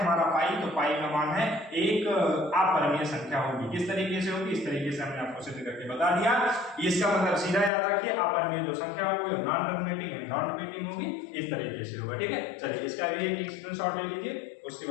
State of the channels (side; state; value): right; drops out; at 7.7 s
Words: पाई। तो पाई का मान है एक अपरिमेय संख्या होगी। किस तरीके से होगी? इस तरीके से हमने आपको सिद्ध करके बता दिया। इसका मतलब सीधा याद रखिए, अपरिमेय जो संख्या होगी non terminating and non repeating होगी, इस तरीके से होगा, ठीक है। चलिए इसका भी एक स्क्रीनशॉट ले लीजिए, उसके